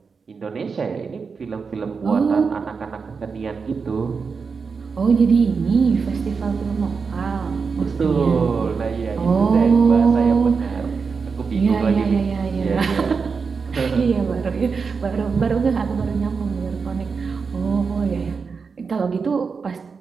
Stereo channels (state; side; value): quieter; left; 5.3 dB